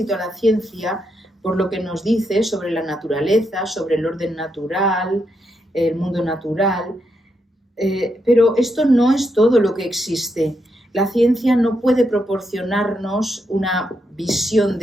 a la ciencia por lo que nos dice sobre la naturaleza, sobre el orden natural, el mundo natural, pero esto no es todo lo que existe. La ciencia no puede proporcionarnos una visión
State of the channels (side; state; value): both; normal; correlation 0.81